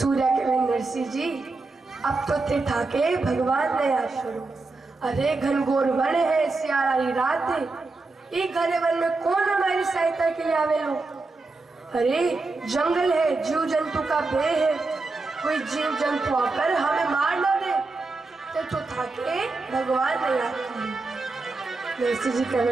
कहे नरसिंह जी अब तो थे ठाके भगवान ने याद करो। अरे घनघोर वन है, सियारी रात है, एक घने वन में कौन हमारी सहायता के लिए आवे लो। अरे जंगल है, जीव जंतु का भय है, कोई जीव जंतु आकर हमें मार न दे। तो ठाके भगवान ने याद करो। नरसिंह जी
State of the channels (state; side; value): quieter; left; 3.6 dB